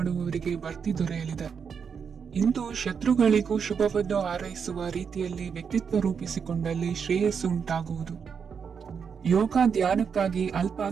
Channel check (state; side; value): quieter; left; 6.5 dB